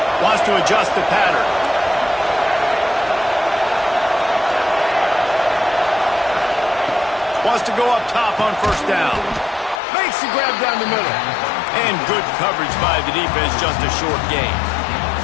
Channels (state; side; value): drops out; right; at 9.8 s